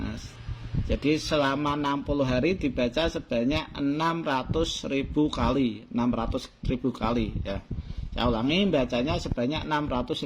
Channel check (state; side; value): identical; both; correlation 1.00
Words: Jadi selama 60 hari dibaca sebanyak 600.000 kali, 600.000 kali ya. Saya ulangi, bacanya sebanyak